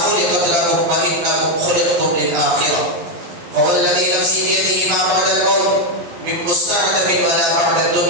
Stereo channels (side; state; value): left; late; 11 ms